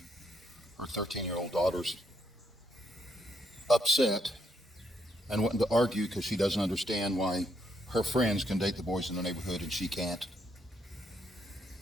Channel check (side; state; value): both; normal; correlation 0.75